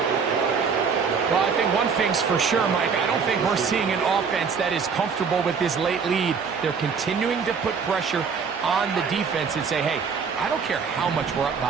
Well, I think one thing's for sure, Mike. I don't think we're seeing an offense that is comfortable with this late lead. They're continuing to put pressure on the defense and say, hey, I don't care how much we're up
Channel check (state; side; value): quieter; left; 5.9 dB